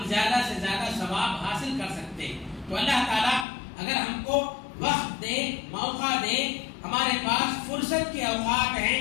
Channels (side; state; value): right; drops out; at 3.5 s